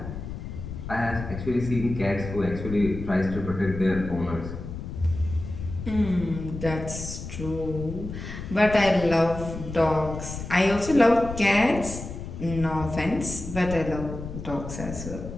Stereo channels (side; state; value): left; noise; rumble, 9 dB below the sound